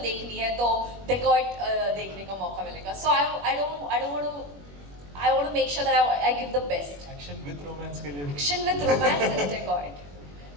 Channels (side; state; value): left; late; 21 ms